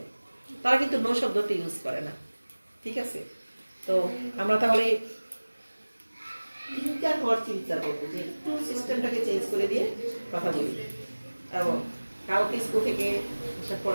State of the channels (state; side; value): inverted; both; correlation -1.00